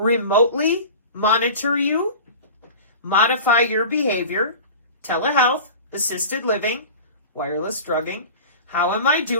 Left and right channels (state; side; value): inverted; both; correlation -0.36